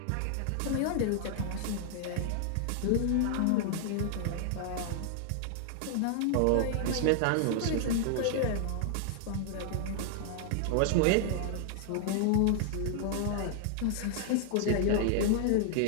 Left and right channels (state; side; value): different; both; correlation 0.00